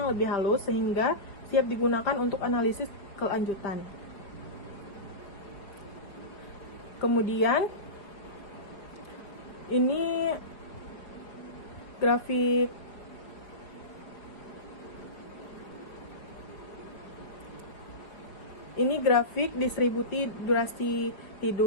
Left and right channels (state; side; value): late; right; 5.0 ms